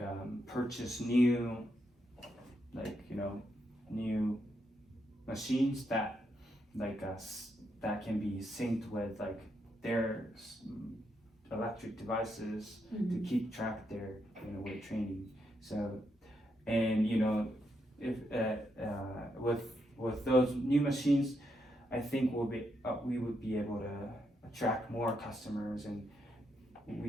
purchase new new machines that that can be synced with their electric devices to keep track of their weight training. So, and if with those new machines, I think we would be able to attract more customers, and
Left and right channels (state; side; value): normal; both; correlation 0.80